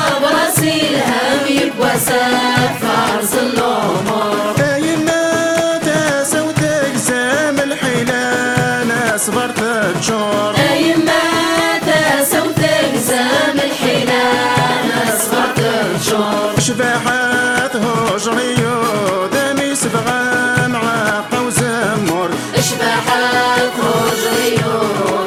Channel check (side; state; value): both; identical; correlation 1.00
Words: راسي الهم بواسات فارس الامور. ايما تسوت اقسام الحيلان صبرت الجور. ايما تسوت اقسام الحيلان صبرت الجور. شباحات هجري ودمي صبغة معاقة وزمر. شباحات هجري